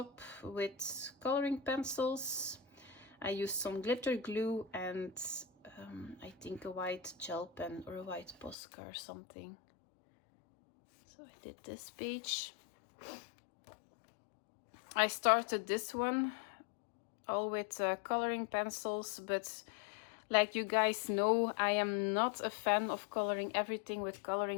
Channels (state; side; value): drops out; right; at 8.6 s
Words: with coloring pencils. I used some glitter glue and I think a white gel pen or a white Posca or something. So I did this page. I started this one all with coloring pencils, but like you guys know, I am not a fan of coloring everything with